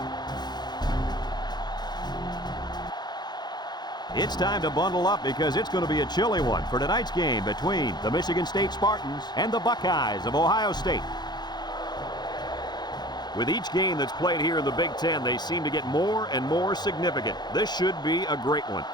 It's time to bundle up because it's going to be a chilly one for tonight's game between the Michigan State Spartans and the Buckeyes of Ohio State. With each game that's played here in the Big Ten, they seem to get more and more significant. This should be a great one.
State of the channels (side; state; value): right; late; 0.21 ms